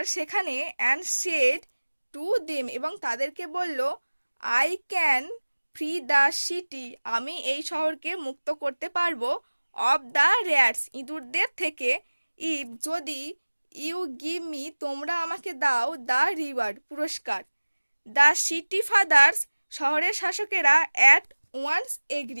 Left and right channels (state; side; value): inverted; both; correlation -1.00